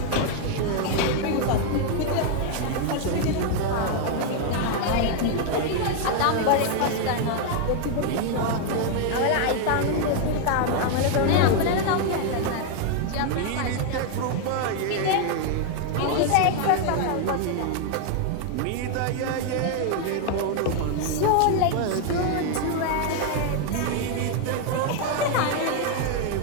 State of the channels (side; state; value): both; different; correlation 0.00